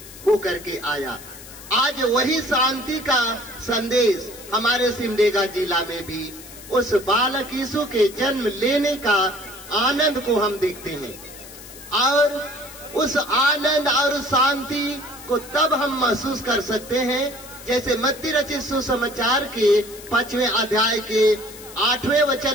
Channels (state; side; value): noise; left; hiss, 17 dB below the sound